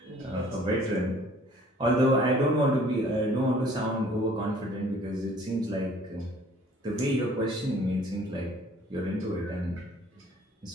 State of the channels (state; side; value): normal; both; correlation 0.54